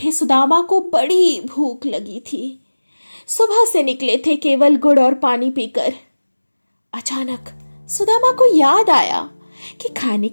सुदामा को बड़ी भूख लगी थी। सुबह से निकले थे केवल गुड़ और पानी पीकर। अचानक सुदामा को याद आया कि खाने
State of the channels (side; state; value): both; inverted; correlation -1.00